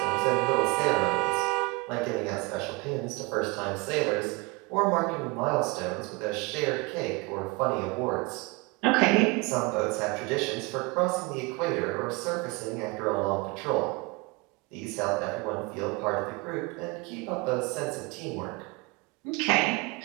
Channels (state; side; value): quieter; left; 26.3 dB